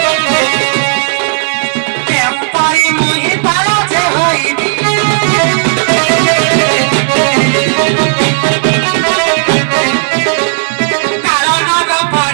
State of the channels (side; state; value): left; silent; digital silence